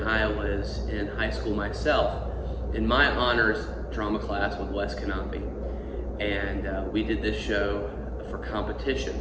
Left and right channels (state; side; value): identical; both; correlation 1.00